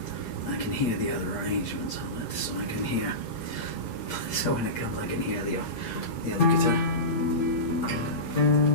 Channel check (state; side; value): late; right; 8.6 ms